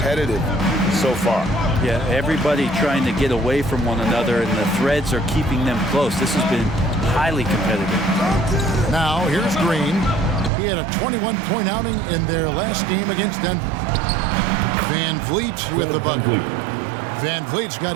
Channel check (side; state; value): left; drops out; at 10.5 s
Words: so far. Yeah, everybody trying to get away from one another, and the threads are keeping them close. This has been highly competitive. Now, here's Green. He had a 21-point outing in their last game against Denver. Van Vliet with the bucket. Van Vliet's got